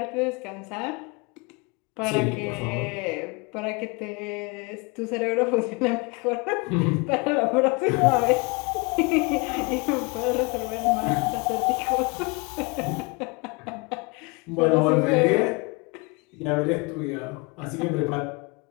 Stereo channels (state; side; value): quieter; right; 29.1 dB